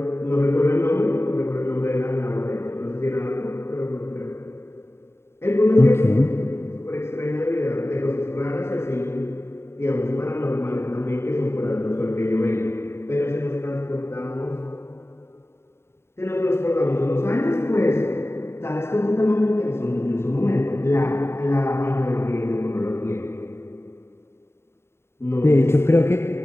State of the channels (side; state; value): right; late; 0.12 ms